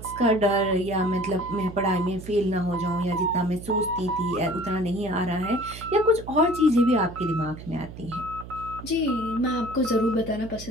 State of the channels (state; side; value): noise; right; hum, 14 dB below the sound